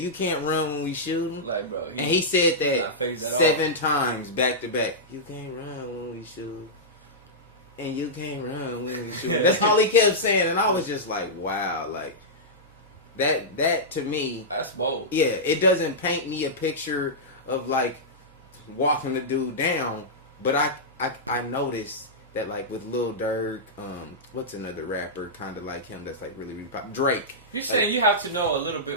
can't run when we shooting. Like, bro, and he said that 7 times back to back. You can't run when we shoot. And you can't run when we shoot. That's all he kept saying. And I was just like, wow. Like, that to me. That's bold. Yeah, it doesn't paint me a picture of, like, walking the dude down. But I noticed that, like, with Lil Durk, what's another rapper kind of like him that's, like, really, really popular? Drake. You're saying you have to know a little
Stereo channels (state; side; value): normal; both; correlation -0.12